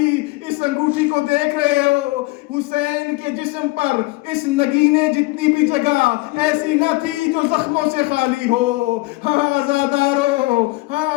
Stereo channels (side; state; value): right; quieter; 22.7 dB